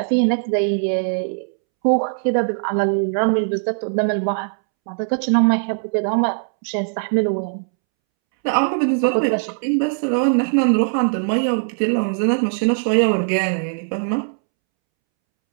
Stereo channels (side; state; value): left; silent; 66 dB below the other